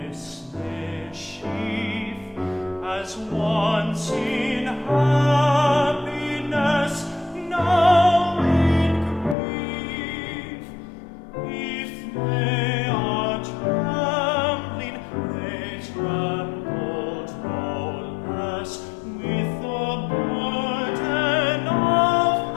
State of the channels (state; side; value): drops out; right; at 9.3 s